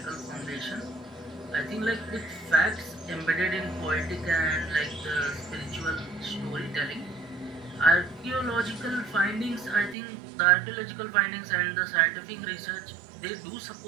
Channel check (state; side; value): drops out; left; at 10.0 s